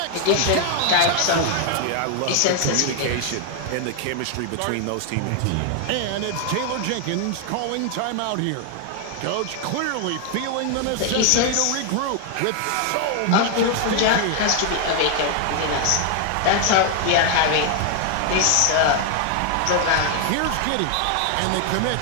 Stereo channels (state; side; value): different; both; correlation 0.00